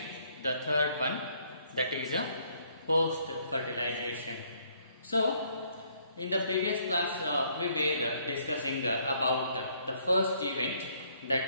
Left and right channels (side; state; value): both; inverted; correlation -0.67